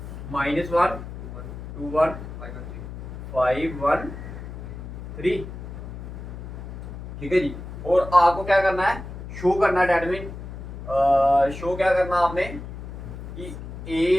-1 2 1 5 1 3। ठीक है जी। और आपको क्या करना है? शो करना है, डेट मीन शो क्या करना आपने कि ए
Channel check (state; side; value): noise; left; hum, 10 dB below the sound